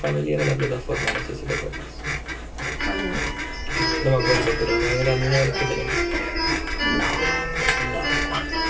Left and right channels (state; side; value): identical; both; correlation 1.00